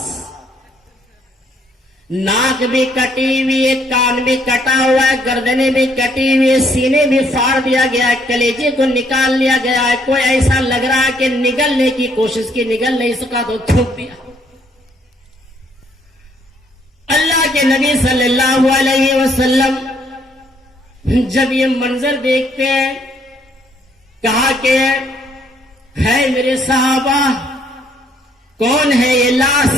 ناک بھی کٹی ہوئی ہے، کان بھی کٹا ہوا ہے، گردنیں بھی کٹی ہوئی ہے، سینے بھی پھاڑ دیا گیا ہے، کلیجے کو نکال لیا گیا ہے، کوئی ایسا لگ رہا ہے کہ نگلنے کی کوشش کی، نگل نہیں سکا تو تھوک دیا۔ اللہ کے نبی صلی اللہ علیہ وسلم جب یہ منظر دیکھتے ہیں، کہا کہ ہے میرے صحابہ، کون ہے یہ لاش؟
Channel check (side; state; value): both; normal; correlation 0.68